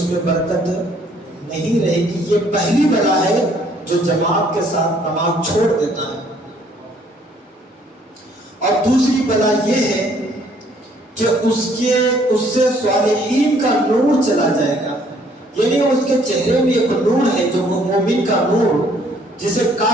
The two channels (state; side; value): normal; both; correlation 0.63